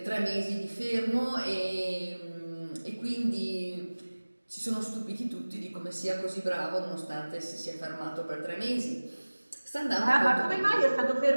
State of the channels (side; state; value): both; inverted; correlation -1.00